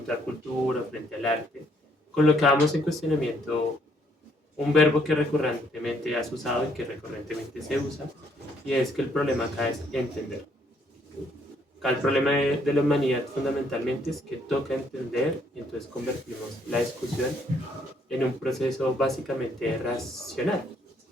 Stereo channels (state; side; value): normal; both; correlation 0.68